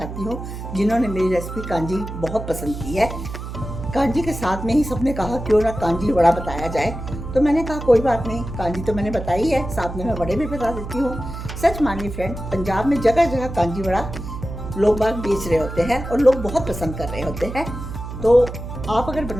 हूँ जिन्होंने मेरी रेसिपी कांजी बहुत पसंद की है। कांजी के साथ में ही सबने कहा क्यों ना कांजी वड़ा बताया जाए, तो मैंने कहा कोई बात नहीं, कांजी तो मैंने बताई है, साथ में मैं वड़े भी बता देती हूँ। सच मानिए फ्रेंड, पंजाब में जगह जगह कांजी वड़ा लोग बाग बेच रहे होते हैं और लोग बहुत पसंद कर रहे होते हैं। तो आप अगर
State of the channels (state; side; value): noise; right; hum, 8 dB below the sound